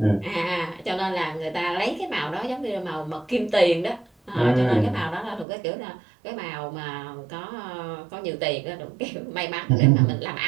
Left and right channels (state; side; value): drops out; left; at 5.5 s